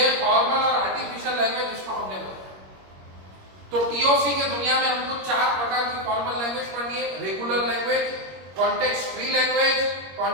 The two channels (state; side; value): late; left; 21 ms